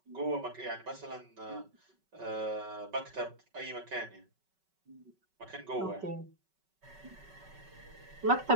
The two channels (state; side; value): late; left; 5.3 ms